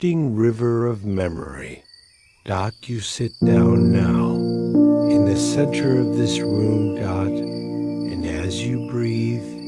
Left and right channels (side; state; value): both; identical; correlation 1.00